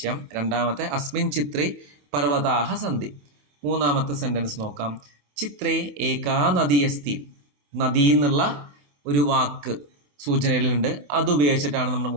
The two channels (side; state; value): left; late; 28 ms